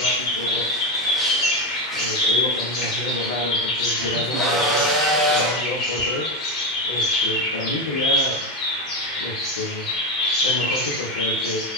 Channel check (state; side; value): normal; both; correlation 0.14